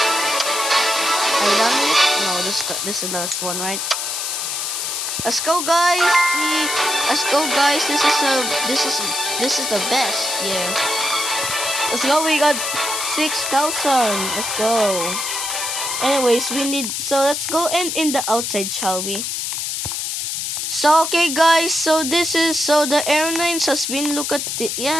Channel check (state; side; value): noise; left; hiss, 2 dB below the sound